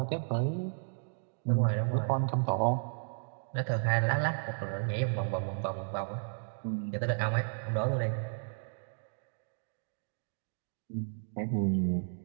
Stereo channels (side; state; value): left; silent; digital silence